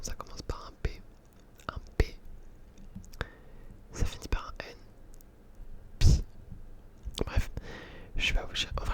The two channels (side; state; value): both; identical; correlation 1.00